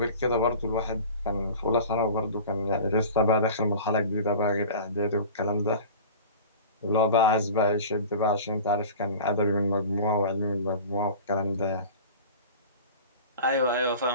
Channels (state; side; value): inverted; both; correlation -0.38